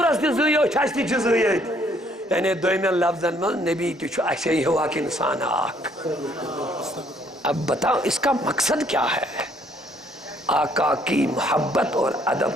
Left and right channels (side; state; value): both; normal; correlation 0.65